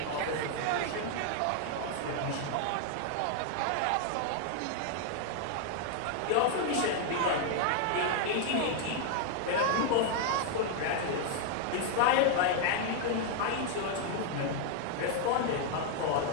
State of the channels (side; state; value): both; different; correlation 0.00